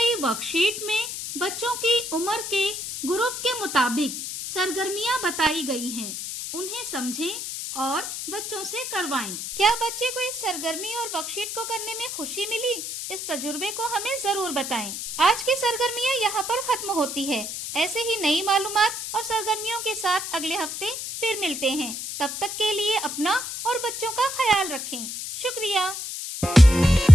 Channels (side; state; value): left; noise; hiss, 6 dB below the sound